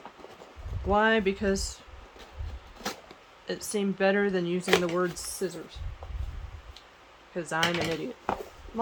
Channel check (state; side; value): identical; both; correlation 1.00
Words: Why? Because it seemed better than using the word scissors. Because I'm an idiot. I'm